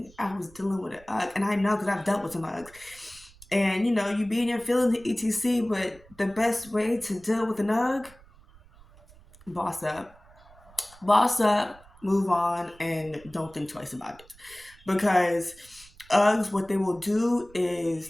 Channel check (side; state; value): right; noise; rumble, 25 dB below the sound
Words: I was dealing with an UGG, and I know because I've dealt with some UGGs. And you be in your feelings, etc. But the best way to deal with an UGG, boss up, boss up, move on, and don't think twice about it, because Uggs, what they will do is